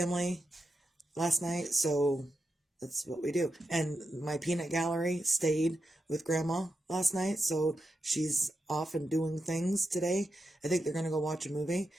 last night, so that's what we do. And my peanut gallery stayed with grandma last night, so she's off and doing things today. I think they're gonna go watch a movie,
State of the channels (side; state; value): both; normal; correlation 0.87